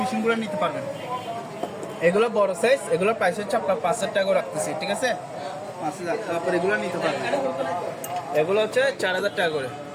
মেশিনগুলো নিতে পারবেন, এগুলো বড় সাইজ, এগুলোর প্রাইস হচ্ছে আপনার 5,000 টাকা করে রাখতেছি, ঠিক আছে, 5,000। তারপর এগুলো নিতে পারবেন, এগুলো হচ্ছে 4,000 টাকা করে,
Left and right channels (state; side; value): identical; both; correlation 1.00